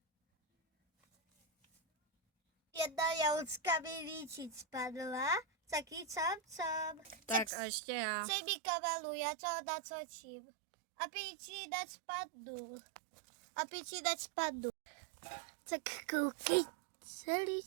Jedna jahučka mi líčit spadla, taky čam. Tak a ještě já. Přej mi kamelu, já to natočím. Aby ti nespadnu. Tak koukej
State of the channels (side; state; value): left; drops out; at 7.5 s